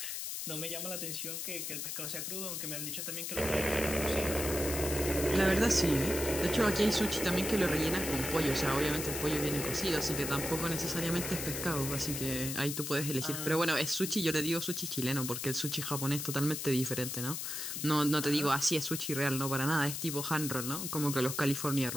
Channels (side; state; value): left; noise; hiss, 4 dB below the sound